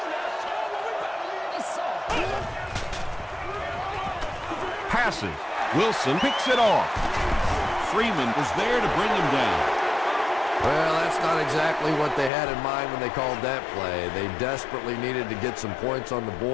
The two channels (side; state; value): right; drops out; at 12.3 s